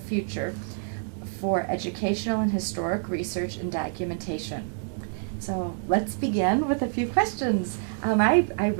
future for educational and historic research and documentation. So let's begin with a few questions. I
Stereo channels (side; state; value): left; silent; digital silence